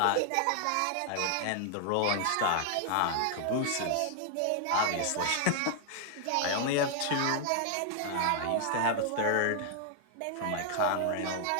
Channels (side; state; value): both; different; correlation 0.00